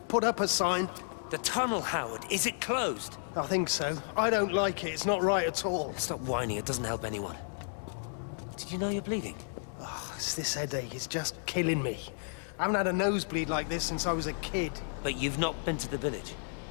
put up a sign. The tunnel, Howard, is it closed? I think so. I don't like it. It's not right at all. Stop whining, it doesn't help anyone. Did you know you're bleeding? Oh, it's this headache. It's just killing me. I haven't had a nosebleed like this since I was a kid. But you've not been to the village?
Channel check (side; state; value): right; silent; digital silence